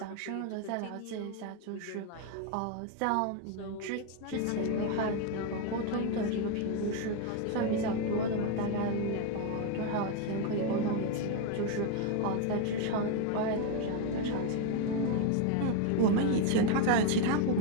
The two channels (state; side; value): different; both; correlation 0.02